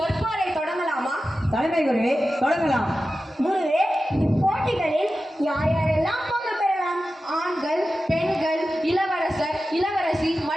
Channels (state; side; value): normal; both; correlation 0.93